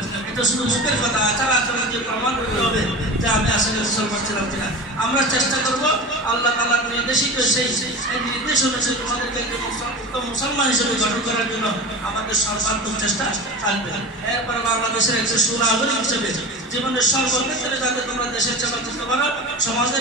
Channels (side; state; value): both; normal; correlation 0.31